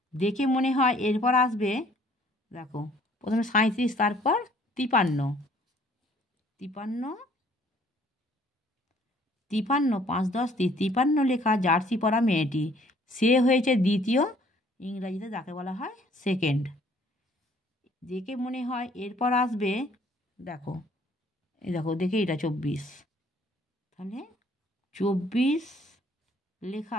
দেখে মনে হয় এরপর আসবে, দেখো প্রথমে 37, তারপর 53, 5 10 53 লেখা জার্সি পরা মেয়েটি। সে হয়েছে দ্বিতীয়, ইংরাজিতে যাকে বলা হয় সেকেন্ড। দেখে মনে হয় এরপর আসবে, দেখো দেখে এটা 24, তাহলে 24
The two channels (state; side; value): normal; both; correlation 0.59